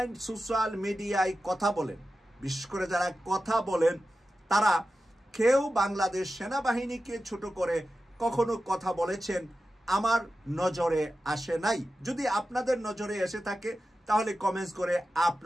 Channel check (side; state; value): both; normal; correlation 0.93